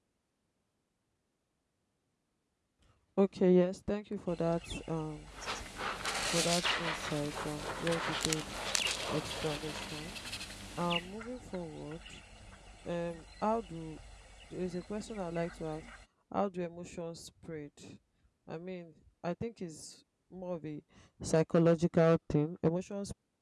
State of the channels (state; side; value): identical; both; correlation 1.00